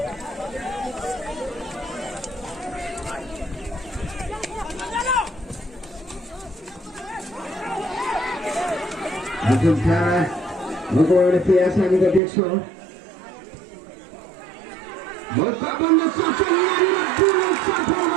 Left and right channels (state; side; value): drops out; left; at 12.2 s